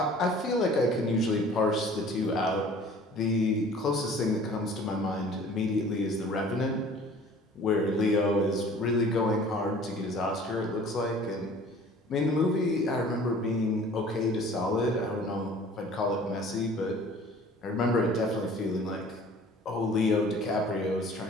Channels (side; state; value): both; normal; correlation 0.48